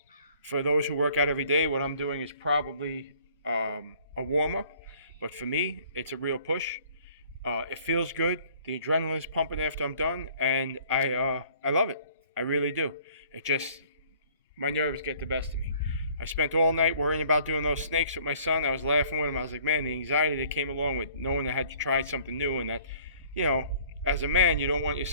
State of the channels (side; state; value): both; inverted; correlation -0.55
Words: those who work out every day, what I'm doing is probably a warm-up. But for me, it's a real push. It feels good. The adrenaline is pumping after I'm done, and I love it. I really do. My nerves get the best of me. I spent all night worrying about doing those snakes with my son. I was laughing with him. I was like, man, the anxiety that came along with knowing I had to try something new, and that, as a man, you don't want your